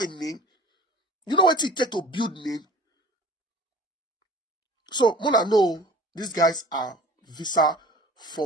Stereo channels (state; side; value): normal; both; correlation 0.44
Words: name? You know what it takes to build name? So Mona know these guys are visa